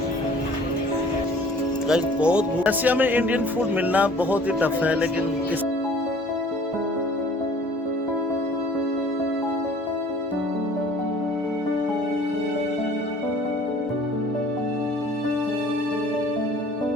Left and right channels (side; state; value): both; normal; correlation 0.51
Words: गाइस बहुत रशिया में इंडियन फूड मिलना बहुत ही टफ है, लेकिन